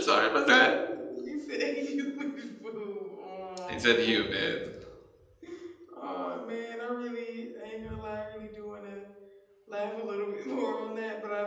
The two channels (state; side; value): identical; both; correlation 1.00